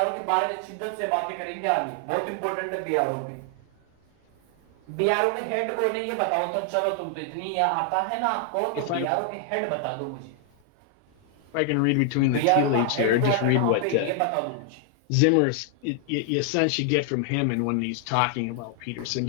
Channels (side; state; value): both; different; correlation 0.00